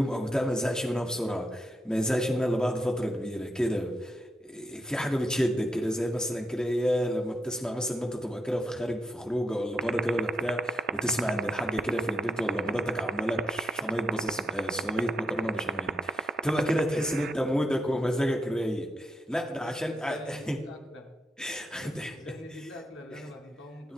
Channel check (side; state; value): both; normal; correlation 0.78